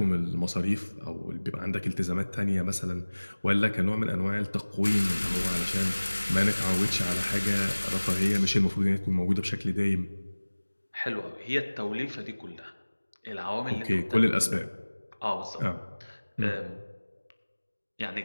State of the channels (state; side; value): inverted; both; correlation -1.00